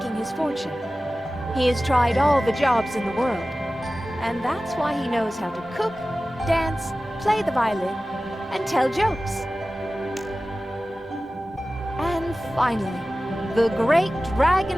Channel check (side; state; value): both; normal; correlation 0.96